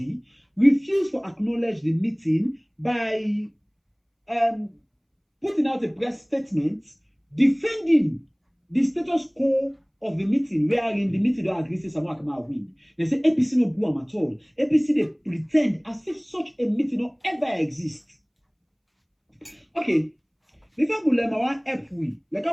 refused to acknowledge the meeting by putting out a press statement defending the status quo of the meeting, wherein the meeting don't agree to Samuel Akama win. They say APC no go am at all. APC they pretend as if such a meeting don't ever exist. Okay, before we learn our help we like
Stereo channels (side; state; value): both; identical; correlation 1.00